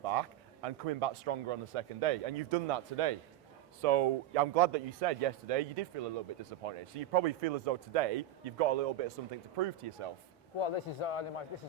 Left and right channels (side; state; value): left; quieter; 10.7 dB